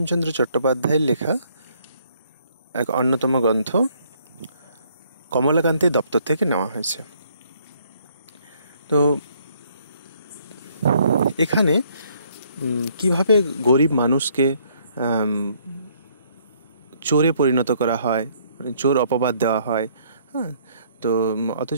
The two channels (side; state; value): both; inverted; correlation -0.66